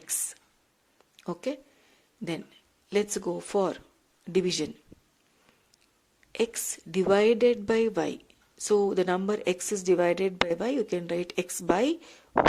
Okay. Then let's go for division. X divided by y. So the number x is divided by y. You can write x by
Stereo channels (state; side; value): identical; both; correlation 1.00